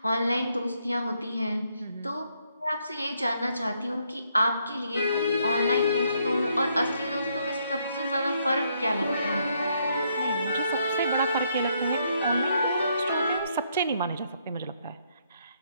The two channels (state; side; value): inverted; both; correlation -0.73